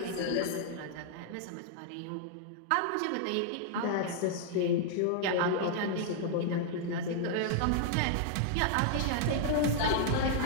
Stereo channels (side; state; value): both; different; correlation -0.01